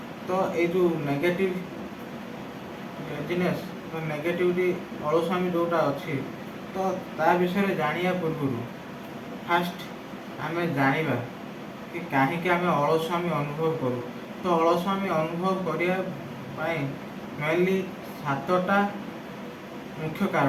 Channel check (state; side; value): identical; both; correlation 1.00